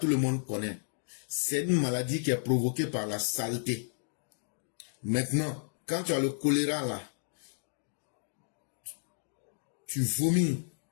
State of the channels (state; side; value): silent; right; digital silence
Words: le monde connaît. C'est une maladie qui est provoquée par la saleté. Maintenant, quand tu as le choléra, là, tu vomis.